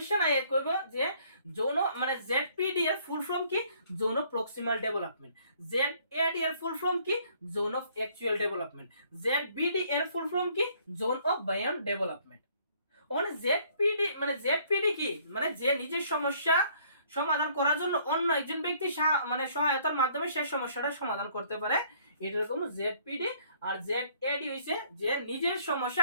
আয় করবে যে জোন মানে জেডপিডি এর ফুল ফর্ম কি, জোন অফ প্রক্সিমাল ডেভেলপমেন্ট, জেডএডি এর ফুল ফর্ম কি, জোন অফ অ্যাকচুয়াল ডেভেলপমেন্ট, জেডবিডি এর ফুল ফর্ম কি, জোন অফ বায়ন ডেভেলপমেন্ট। মানে জেডপিডি মানে জেডপিডি কি, মানে যে নিজের সমস্যা সমাধান করার জন্য অন্য একজন ব্যক্তি মানে সহায়তার মাধ্যমে সেই সমস্যাটা সমাধান করতে পারে, এটা রকম জেডপিডি। আর জেডএডি হইছে যে নিজের সমস্যা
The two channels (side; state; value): both; inverted; correlation -0.62